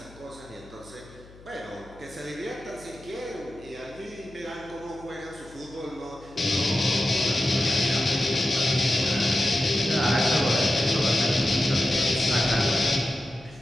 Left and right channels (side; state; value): left; noise; hum, 22 dB below the sound